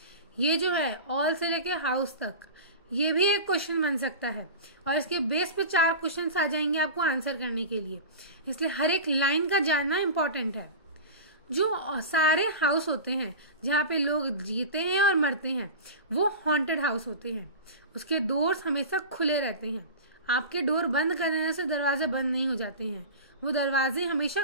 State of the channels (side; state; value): both; inverted; correlation -0.31